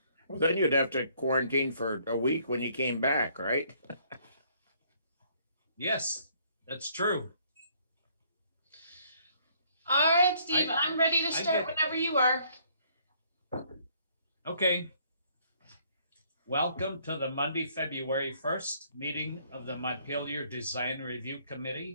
Well, then you'd have to quarantine for a week when you came back, right? Yes, that's true. All right, Steve, I'm ready to start whenever you are. Okay. Welcome to the Monday, February 1st meeting of the Montpelier Design Review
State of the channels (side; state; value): both; inverted; correlation -0.64